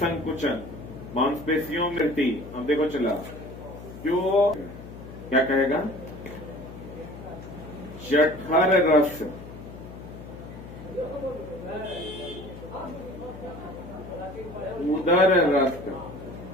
मांसपेशियों में वृद्धि। अब देखो चला, जो क्या कहेगा? जठर रस, उदर रस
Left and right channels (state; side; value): noise; left; hum, 14 dB below the sound